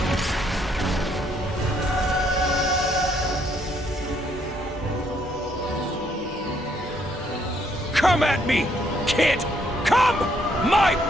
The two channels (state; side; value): normal; both; correlation 0.70